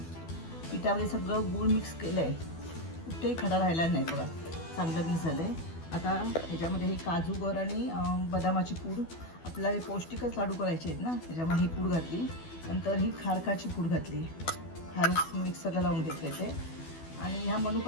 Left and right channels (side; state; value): right; late; 12 ms